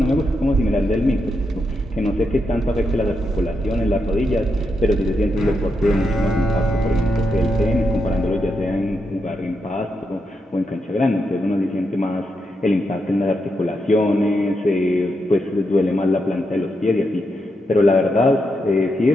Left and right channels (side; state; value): both; normal; correlation 0.83